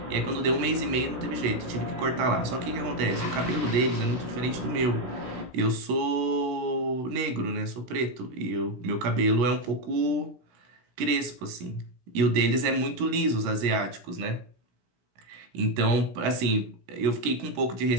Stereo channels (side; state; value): left; late; 16 ms